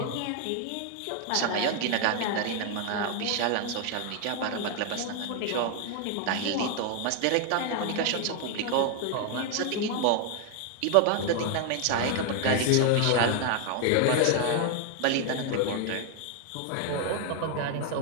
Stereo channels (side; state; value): both; different; correlation 0.01